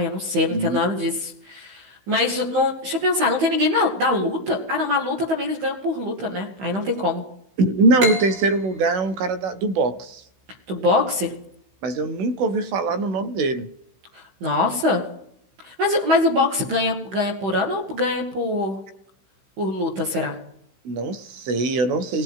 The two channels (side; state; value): left; late; 16 ms